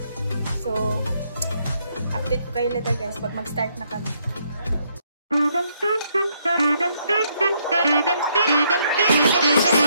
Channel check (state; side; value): inverted; both; correlation -0.72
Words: So update ko kayo later guys pag mag-start na kami.